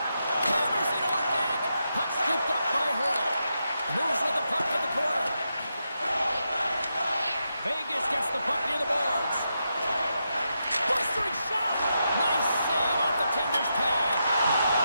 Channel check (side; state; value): both; inverted; correlation -0.85